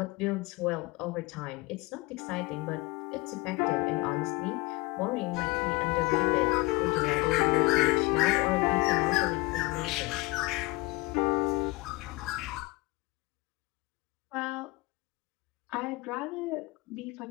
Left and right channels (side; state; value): right; quieter; 23.0 dB